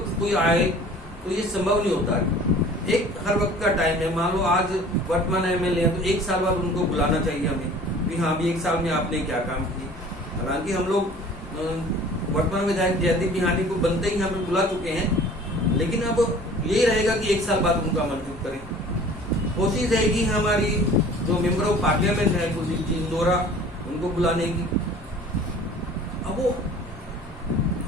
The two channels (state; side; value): normal; both; correlation 0.47